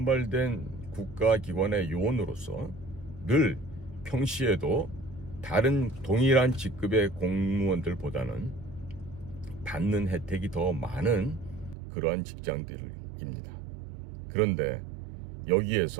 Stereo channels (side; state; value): left; drops out; at 11.8 s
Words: 국가기관의 요원으로서 늘 평시에도 다른 동일한 직급의 공무원들보다는 받는 혜택이 더 많은 그러한 직장들입니다. 그런데